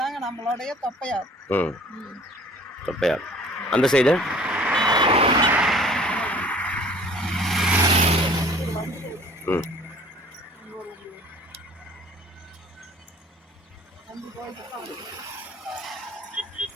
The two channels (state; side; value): normal; both; correlation 0.51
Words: நம்மளுடைய தொப்பையார். தொப்பையார் அந்த சைடு.